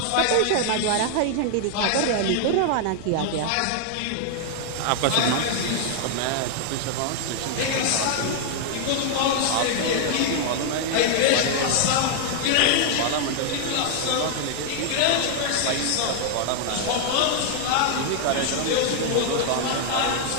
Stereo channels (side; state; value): both; different; correlation 0.00